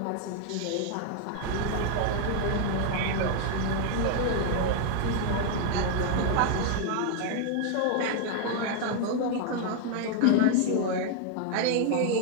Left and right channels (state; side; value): different; both; correlation 0.00